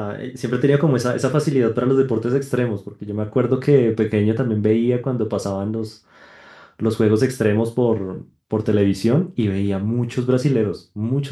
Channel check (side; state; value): both; identical; correlation 1.00